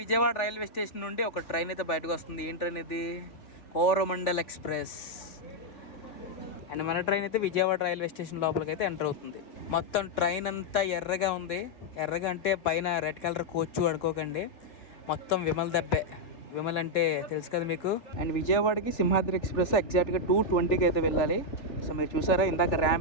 విజయవాడ రైల్వే స్టేషన్ నుండి ఒక ట్రైన్ అయితే బయటకు వస్తుంది. ఏం ట్రైన్ ఇది? కోరమండల్ ఎక్స్ప్రెస్. అండ్ మన ట్రైన్ అయితే విజయవాడ రైల్వే స్టేషన్ లోపలికి అయితే ఎంటర్ అవుతుంది. మొత్తం ట్రైన్ అంతా ఎర్రగా ఉంది. ఎర్రగా అంటే పైన రెడ్ కలర్ కోచ్ అనుకోకండి, మొత్తం విమల్ దబ్బే. విమల్ అంటే తెలుసు కదా మీకు. అండ్ విజయవాడకి సింహాద్రి ఎక్స్ప్రెస్ ఎగ్జాక్ట్గా 2:20కి అయితే వెళ్ళాలి. సో మీరు చూసారా ఇందాక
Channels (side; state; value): right; late; 3.4 ms